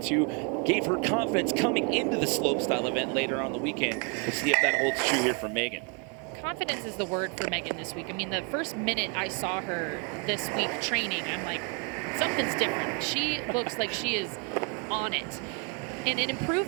gave her confidence coming into the slopestyle event later on the weekend. We'll see if that holds true here for Megan. Confidence is the word for Megan this week. I mean, the first minute I saw her this week training, I'm like, something's different. She looks like she is on it. And an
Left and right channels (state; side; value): quieter; left; 34.0 dB